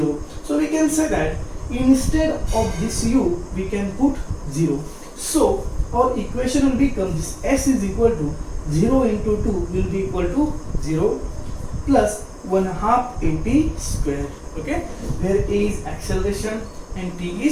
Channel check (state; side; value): identical; both; correlation 1.00